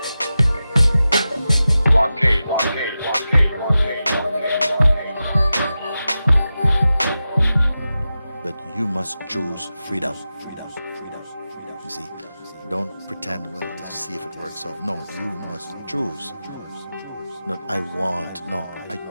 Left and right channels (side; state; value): both; inverted; correlation -0.92